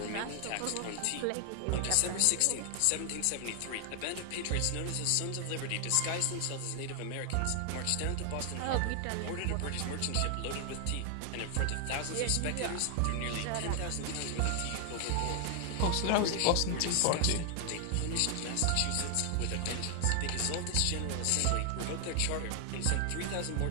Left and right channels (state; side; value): different; both; correlation 0.00